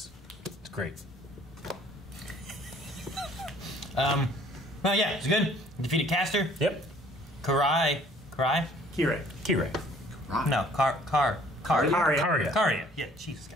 It's great. Well, yeah, it's good. Defeated Caster. Yep. Karai. Kirei. Kirei. No, Karya. Karya. Yeah, Jesus,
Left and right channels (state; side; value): normal; both; correlation 0.57